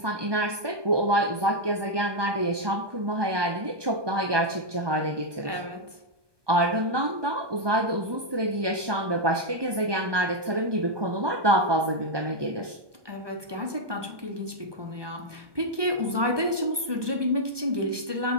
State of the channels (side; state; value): left; late; 1.2 ms